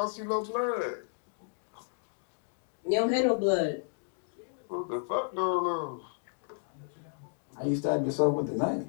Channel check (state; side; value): silent; right; digital silence